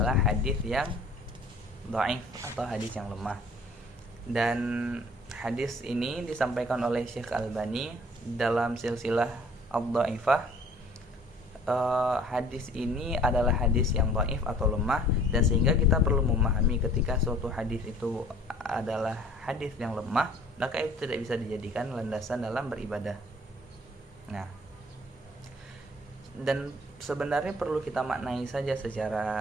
hadis yang dhaif atau hadis yang lemah. Dan hadis ini disampaikan oleh Syekh Albani dalam silsilah ad-dhaifah. Hadis ini adalah hadis yang dhaif atau lemah, dan sehingga kita perlu memahami ketika suatu hadis itu adalah hadis yang lemah, maka itu tidak bisa dijadikan landasan dalam beribadah. Nah, dan sebenarnya perlu kita maknai saja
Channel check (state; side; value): normal; both; correlation 0.53